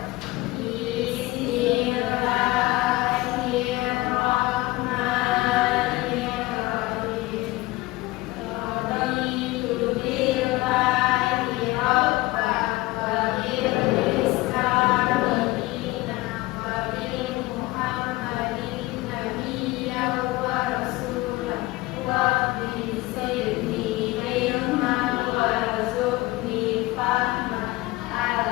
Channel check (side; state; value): right; quieter; 20.0 dB